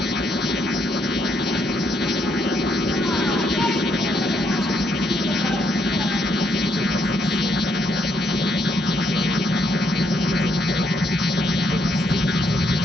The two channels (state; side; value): normal; both; correlation 0.74